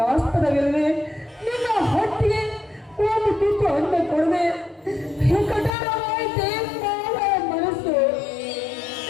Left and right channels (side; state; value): right; drops out; at 5.7 s